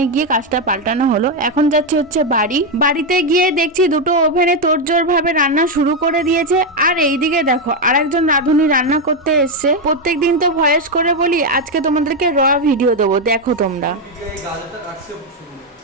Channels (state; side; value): normal; both; correlation 0.05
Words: গিয়ে কাজটা পাল্টানো হলো। এখন যাচ্ছি হচ্ছে বাড়িতে গিয়ে দেখছি দুটো ওভেনে তোড়জোড় ভাবে রান্না শুরু করে দিয়েছে। আর এইদিকে দেখো আরেকজন রাঁধুনি রান্না করতে এসছে। প্রত্যেকদিন তো ভয়েস করে বলি, আজকে তোমাদেরকে র ভিডিও দেবো, দেখো তোমরা।